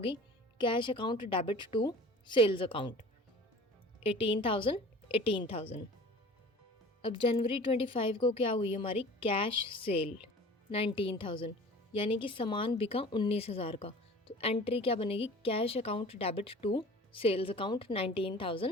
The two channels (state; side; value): normal; both; correlation 0.42